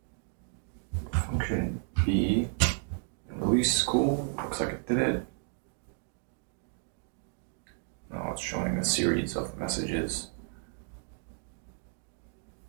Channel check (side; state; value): left; silent; 56 dB below the other